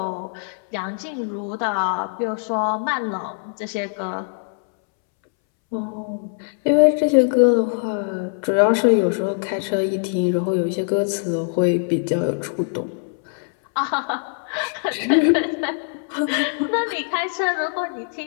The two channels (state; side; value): silent; right; 64 dB below the other